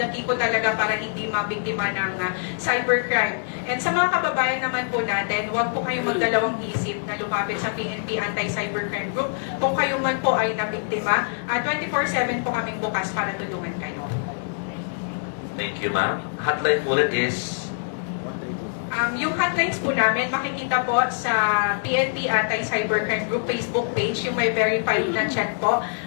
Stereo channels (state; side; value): silent; right; 62 dB below the other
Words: key po talaga para hindi mabiktima ng cybercrime. And sa mga kababayan naman po natin, huwag po kayong magdalawang isip na lumapit sa PNP Anti-Cybercrime Group. Kung kayo man po ay nabiktima, 24/7 po kaming bukas para tulungan kayo. Thank you, ma'am. Hotline po ulit is... Yung hotlines po namin, makikita po sa PNP Anti-Cybercrime Group Facebook page, yung may verified na chat po.